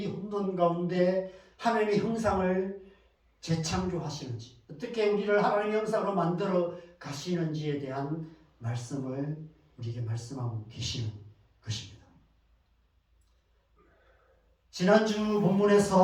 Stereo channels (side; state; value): both; identical; correlation 1.00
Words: 혼돈 가운데 하나님의 형상을 재창조하시는지, 어떻게 우리를 하나님의 형상으로 만들어 가시는지에 대한 말씀을 우리에게 말씀하고 계시는 것입니다. 지난주